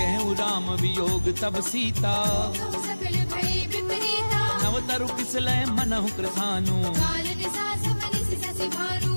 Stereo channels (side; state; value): both; inverted; correlation -1.00